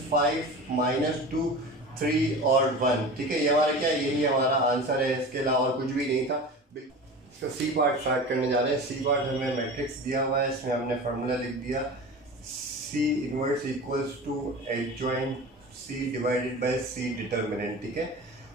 - 2 3 और 1। ठीक है, ये हमारा क्या है, यही हमारा आंसर है, इसके अलावा और कुछ भी नहीं था। इसका सी पार्ट स्टार्ट करने जा रहे हैं। सी पार्ट हमें मैट्रिक्स दिया हुआ है, इसमें हमने फार्मूला लिख दिया, C inverse equals to adjoint C divided by C determinant. ठीक है,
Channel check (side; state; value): both; normal; correlation 0.33